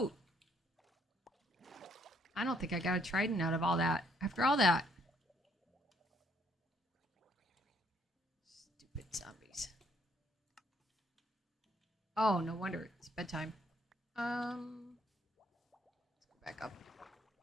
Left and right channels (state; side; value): normal; both; correlation 0.68